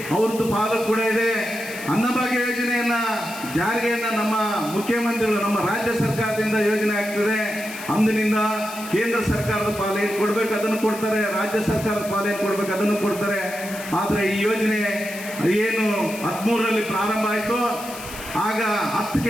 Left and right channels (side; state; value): left; noise; hiss, 13 dB below the sound